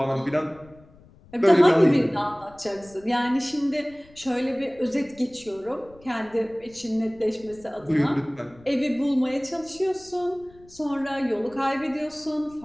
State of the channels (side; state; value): left; noise; rumble, 25 dB below the sound